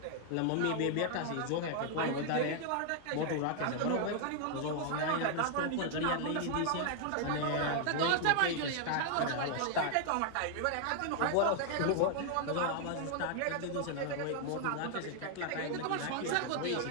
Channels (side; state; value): both; different; correlation 0.00